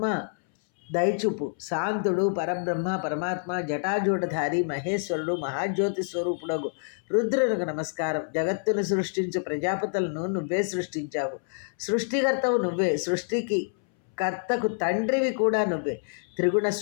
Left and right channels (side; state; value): right; silent; 60 dB below the other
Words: దయచూపు. శాంతుడు పరమాత్మ జటాజూటధారి మహేశ్వరుడు మహాజ్యోతి స్వరూపుడగు రుద్రునికి నమస్కారం. జగత్తును సృష్టించు ప్రజాపతులను నువ్వే సృష్టించావు. సృష్టికర్తవు నువ్వే, సృష్టికి కర్తకు తండ్రివి కూడా నువ్వే. త్రిగుణ